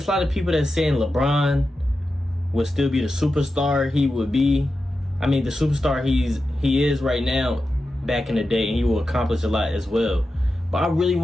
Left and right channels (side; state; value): both; normal; correlation 0.91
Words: of people that saying LeBron would still be the superstar he would be. I mean, the superstar he is right now back in the day, and he will accomplish a lot as well. But I really